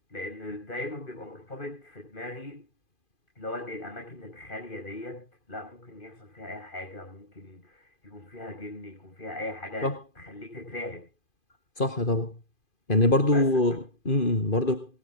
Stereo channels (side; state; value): right; late; 2.5 ms